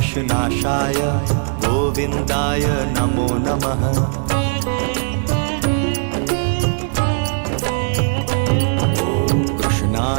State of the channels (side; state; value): left; silent; digital silence